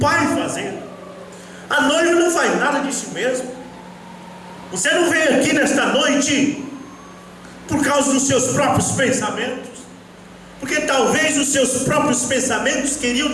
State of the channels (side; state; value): both; identical; correlation 1.00